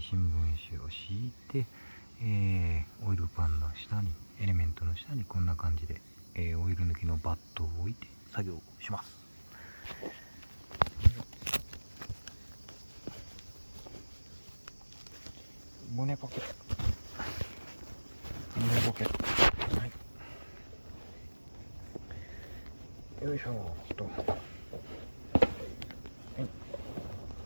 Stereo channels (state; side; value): inverted; both; correlation -1.00